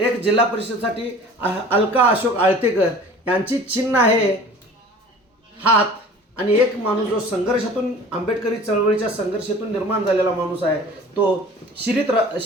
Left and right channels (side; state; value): both; normal; correlation 0.44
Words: जिल्हा परिषदेसाठी अलका अशोक आळतेकर यांची चिन्ह आहे हात, आणि एक माणूस जो संघर्षातून आंबेडकरी चळवळीच्या संघर्षातून निर्माण झालेला माणूस आहे तो